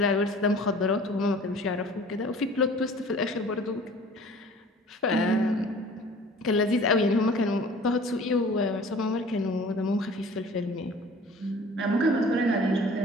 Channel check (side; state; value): both; normal; correlation 0.47